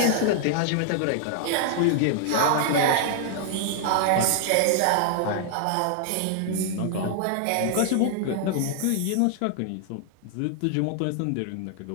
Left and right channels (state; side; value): different; both; correlation 0.00